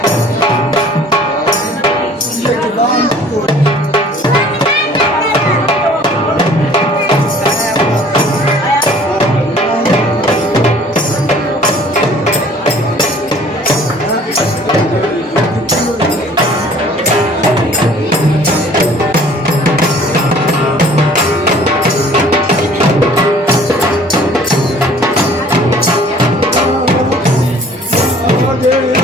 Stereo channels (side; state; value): both; normal; correlation 0.52